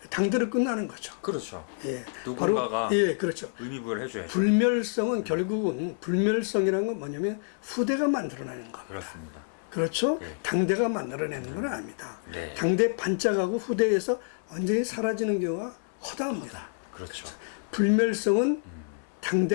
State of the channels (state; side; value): silent; right; 59 dB below the other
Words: 당대로 끝나는 거죠. 그렇죠. 예. 누군가가 바로, 예, 그렇죠. 의미부여를 해줘야죠. 불멸성은 결국은 불멸성이라는 건 뭐냐면 후대가 만들어내는 겁니다. 그렇습니다. 그렇죠? 네. 당대가 만들어내는 건 아닙니다. 네. 당대 반짝하고 후대에서 완전히 사라지는 경우가 허다합니다. 그렇죠. 불멸성은